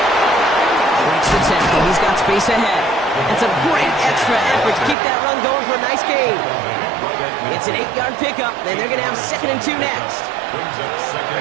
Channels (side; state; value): left; drops out; at 5.0 s